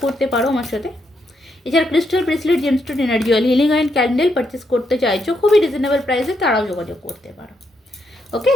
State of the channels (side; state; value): both; normal; correlation 0.79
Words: করতে পারো আমার সাথে। এছাড়া crystal bracelet, gemstone, energy oil, healing oil, candle purchase করতে চাইছো খুবই রিজনেবল প্রাইসে, তারাও যোগাযোগ করতে পারো। ওকে,